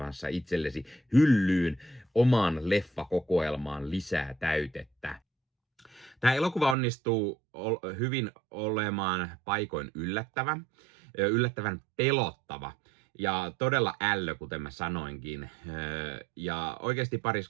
itsellesi hyllyyn omaan leffakokoelmaan lisää täytettä. Tämä elokuva onnistuu hyvin olemaan paikoin yllättävän pelottava ja todella ällö, kuten mä sanoinkin. Ja oikeasti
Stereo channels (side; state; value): left; drops out; at 6.8 s